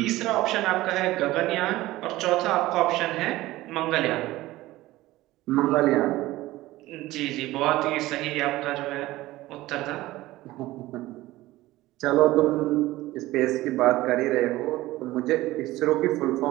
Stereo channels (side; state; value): left; quieter; 17.3 dB